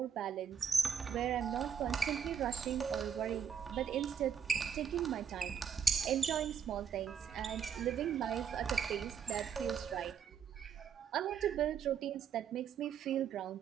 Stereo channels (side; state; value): left; quieter; 7.5 dB